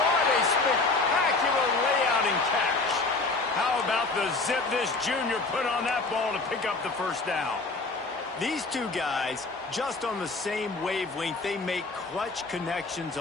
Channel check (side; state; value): right; quieter; 3.6 dB